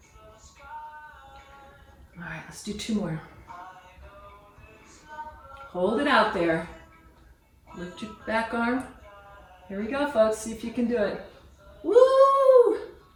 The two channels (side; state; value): both; identical; correlation 1.00